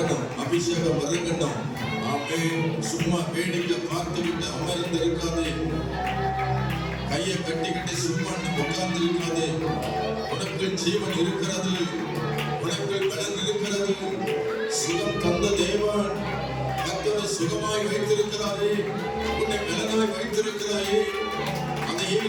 அபிஷேகம் இறங்கணும். ஆமென். சும்மா வேடிக்கை பார்த்துக்கிட்டு அமர்ந்து இருக்காதே, கையை கட்டிக்கிட்டு சும்மா உட்கார்ந்து இருக்காதே. உனக்கு ஜீவன் இருக்கிறது, உனக்கு பலன் இருக்கிறது. சுகம் தந்த தேவன் கர்த்தரை சுகமாய் வைத்திருக்கிறாரே, உன்னை பலனாய் வைத்திருக்கிறாயே. அதை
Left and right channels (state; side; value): identical; both; correlation 1.00